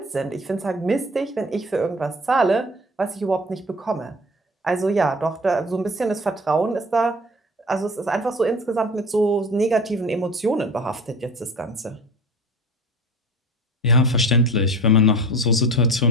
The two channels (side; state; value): both; normal; correlation 0.39